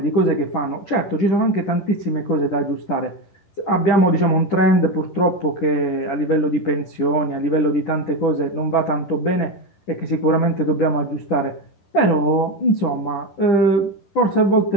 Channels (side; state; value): right; late; 10 ms